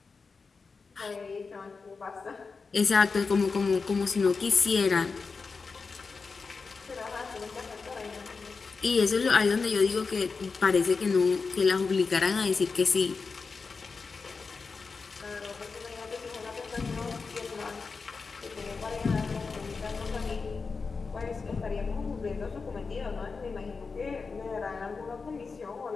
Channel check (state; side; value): quieter; right; 4.7 dB